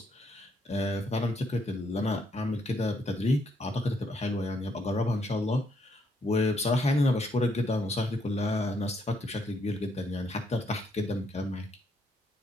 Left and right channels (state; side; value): normal; both; correlation 0.73